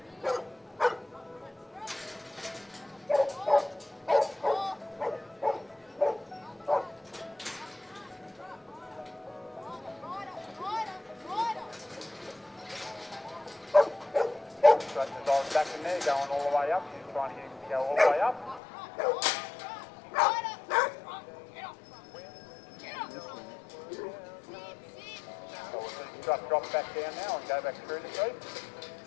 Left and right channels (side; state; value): right; drops out; at 18.6 s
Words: Back in there, going all the way up. She's trying to get him to go all the way up. So we'll see the strut drop back down now and go back through the street.